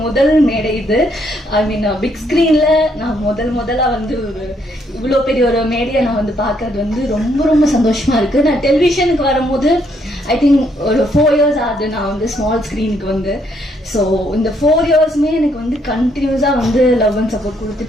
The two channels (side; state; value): both; normal; correlation 0.71